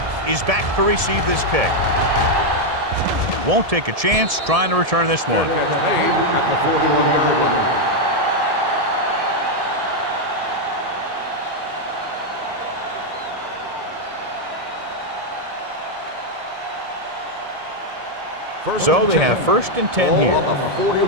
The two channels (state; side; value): late; left; 1.7 ms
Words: is back to receive this kick. Won't take a chance trying to return this one. Gets made at the 41-yard line. So they have first and 10 here. Ball on the